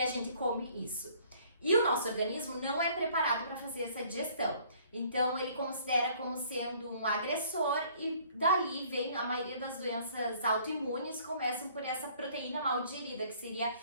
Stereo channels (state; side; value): inverted; both; correlation -0.58